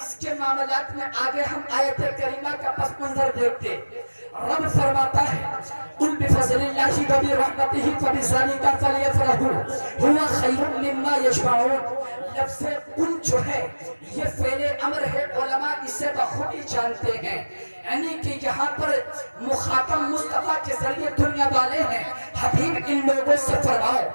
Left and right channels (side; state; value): both; inverted; correlation -1.00